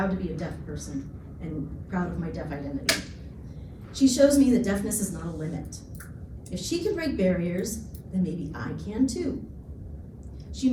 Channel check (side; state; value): both; identical; correlation 1.00